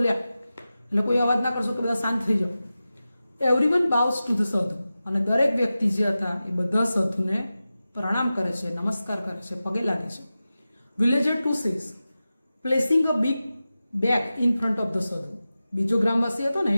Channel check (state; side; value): inverted; both; correlation -0.94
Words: એટલે કોઈ અવાજ ના કરશો કે બધા શાંત થઈ જાઓ. એવરીવન બાઉસ ટુ ધ સાધુ. અને દરેક વ્યક્તિ જે હતા એ બધા સાધુને પ્રણામ કરે છે, નમસ્કાર કરે છે, પગે લાગે છે. Villager 2 says placing a big bag in front of the સાધુ. બીજો ગ્રામવાસી હતો ને